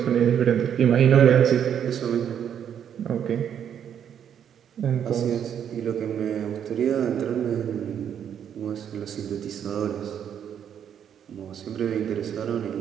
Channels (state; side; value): quieter; left; 8.9 dB